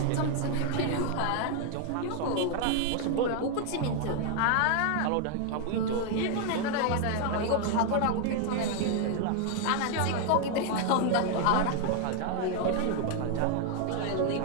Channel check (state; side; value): different; both; correlation 0.00